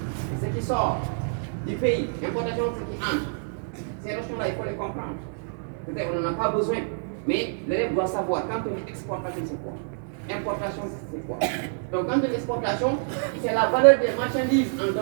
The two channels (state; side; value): silent; left; digital silence